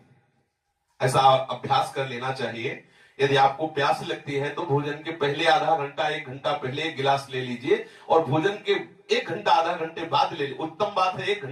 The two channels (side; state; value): both; identical; correlation 1.00